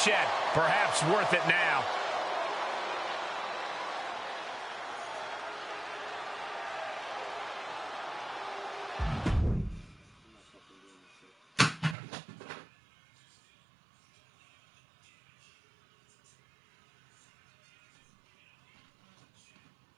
perhaps worth it now.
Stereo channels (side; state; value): left; drops out; at 12.0 s